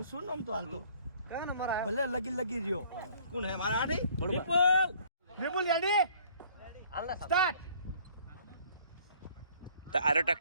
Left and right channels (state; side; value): inverted; both; correlation -0.56